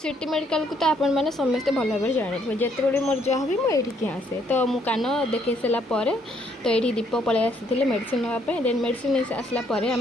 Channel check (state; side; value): normal; both; correlation 0.69